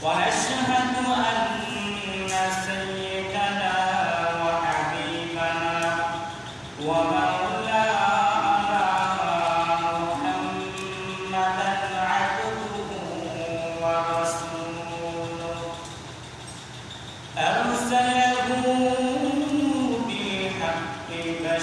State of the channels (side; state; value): both; identical; correlation 1.00